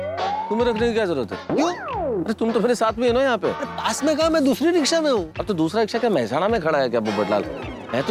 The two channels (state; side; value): identical; both; correlation 1.00